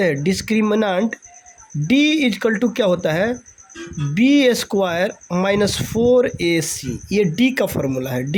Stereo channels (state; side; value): identical; both; correlation 1.00